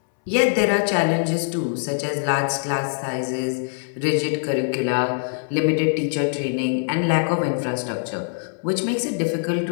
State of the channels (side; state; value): right; silent; 64 dB below the other